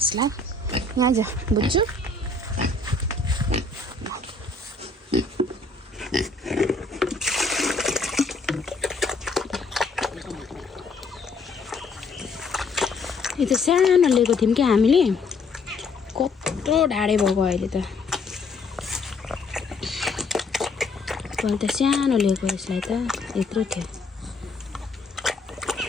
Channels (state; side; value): quieter; right; 3.7 dB